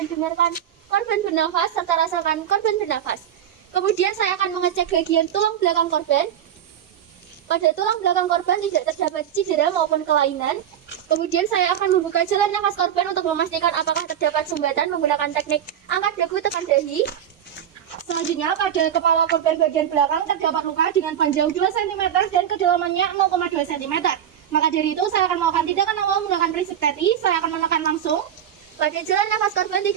dengarkan korban bernafas serta rasakan korban bernafas. Kemudian saya akan mengecek bagian tulang belakang korban. Pada tulang belakang korban tidak terdapat cedera maupun kelainan. Kemudian saya akan membuka jalan nafas korban untuk memastikan apakah terdapat sumbatan menggunakan teknik angkat dagu tekan dahi. Selanjutnya pada kepala korban bagian belakang terdapat luka dengan panjang 2 cm dan kedalamannya 0,2 cm. Maka dari itu saya akan melakukan tindakan awal menggunakan prinsip TETI. Saya akan menekan langsung. Pada jalan nafas korban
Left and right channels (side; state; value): left; quieter; 9.8 dB